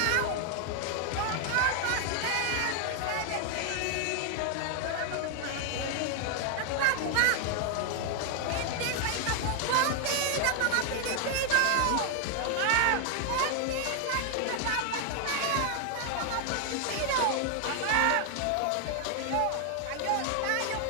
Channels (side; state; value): both; different; correlation 0.00